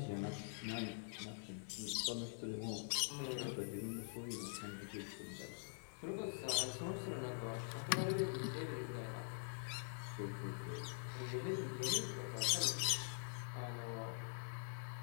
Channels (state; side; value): silent; right; digital silence